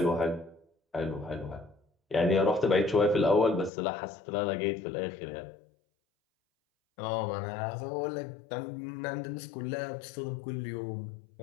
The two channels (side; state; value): right; drops out; at 3.7 s